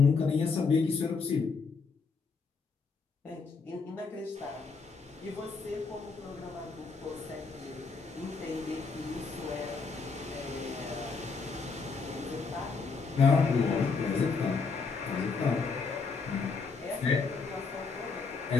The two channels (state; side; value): quieter; right; 4.7 dB